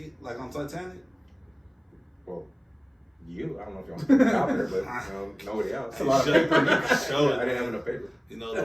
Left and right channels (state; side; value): identical; both; correlation 1.00